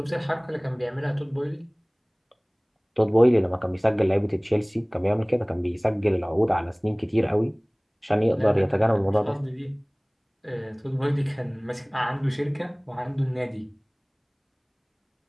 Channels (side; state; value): both; identical; correlation 1.00